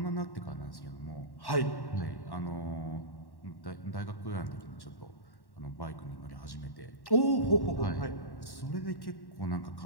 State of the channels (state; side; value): late; right; 1.1 ms